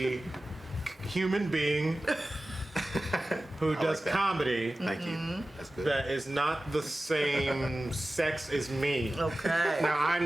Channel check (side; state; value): both; normal; correlation 0.96